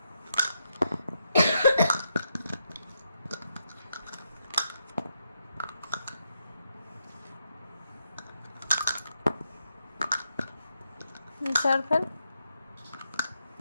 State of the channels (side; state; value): both; inverted; correlation -0.81